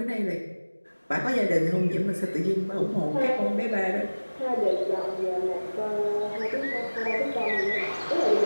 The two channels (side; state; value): both; inverted; correlation -1.00